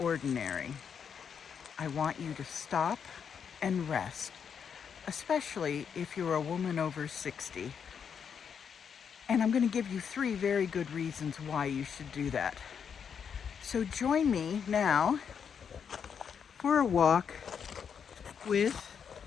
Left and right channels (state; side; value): quieter; right; 7.2 dB